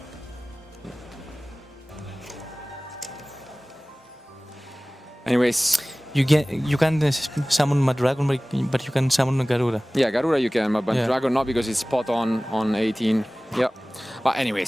Anyways, you can summon Madragon, but you can summon Garura. Yeah, Garura you can, but Dragon not, because it's spot on 18. Yeah. But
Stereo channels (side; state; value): both; normal; correlation 0.98